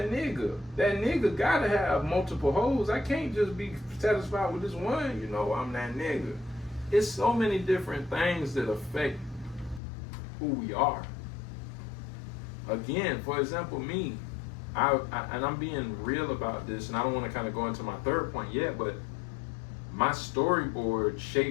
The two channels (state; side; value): drops out; right; at 9.8 s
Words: nigga. That nigga gotta have multiple hoes. I can't just be satisfied with this one. You know, I'm that nigga. It's so many different things that affect who we are. Again, for example, me, and I'm being real about this, and I don't want to kind of go into my third point yet, but my storyboard